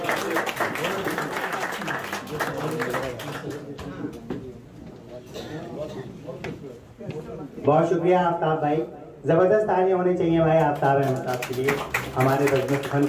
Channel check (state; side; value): identical; both; correlation 1.00